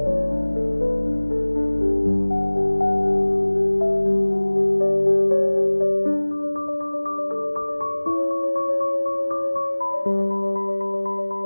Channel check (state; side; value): inverted; both; correlation -1.00